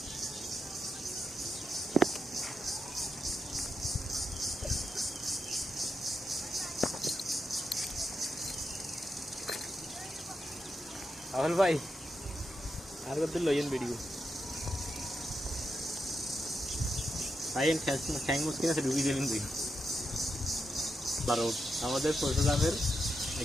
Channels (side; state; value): both; normal; correlation 0.85